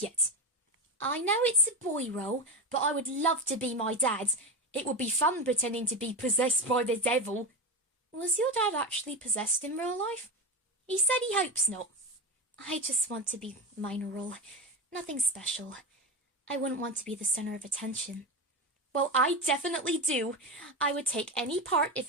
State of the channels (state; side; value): normal; both; correlation 0.18